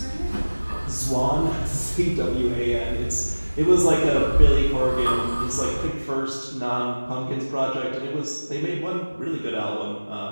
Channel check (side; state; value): both; inverted; correlation -1.00